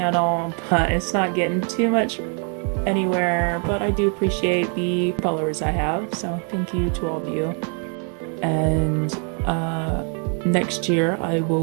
but it's not getting too much anywhere, but I do appreciate the followers I have, so thank you to all of you. And next year I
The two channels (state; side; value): quieter; left; 38.7 dB